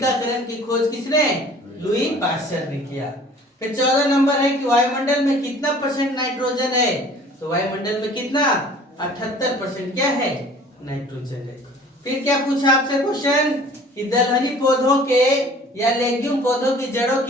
की खोज किसने? लुई पास्चर ने किया। फिर 14 नंबर है कि वायुमंडल में कितना % नाइट्रोजन है। तो वायुमंडल में कितना? 78% क्या है? नाइट्रोजन है। फिर क्या पूछा आपसे क्वेश्चन कि दलहनी पौधों के या लेग्यूम पौधों की जड़ों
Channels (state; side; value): normal; both; correlation 0.49